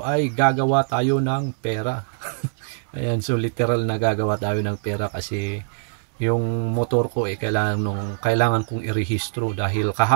ay gagawa tayo ng pera. Ayan, so literal na gagawa tayo ng pera kasi yung motor ko kailangan kong irehistro dahil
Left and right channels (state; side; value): silent; left; digital silence